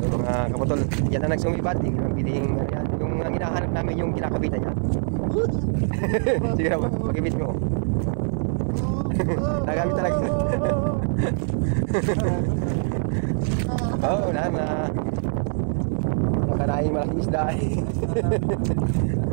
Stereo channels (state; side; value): silent; left; 58 dB below the other